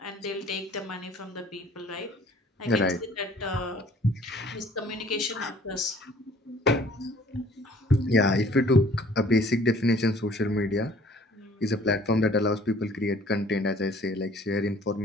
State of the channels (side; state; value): both; normal; correlation 0.55